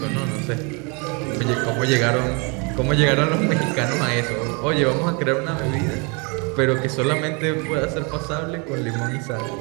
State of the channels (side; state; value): left; quieter; 32.2 dB